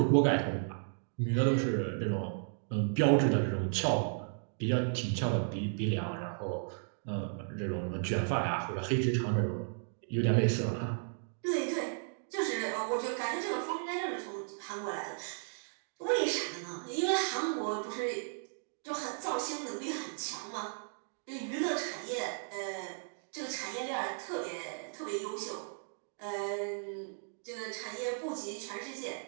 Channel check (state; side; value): silent; left; digital silence